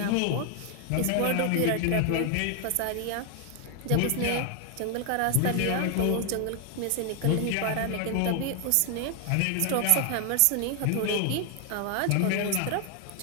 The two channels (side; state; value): both; different; correlation 0.00